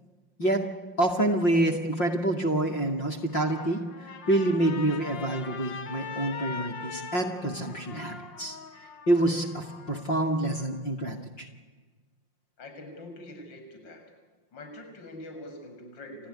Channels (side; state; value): right; late; 5.6 ms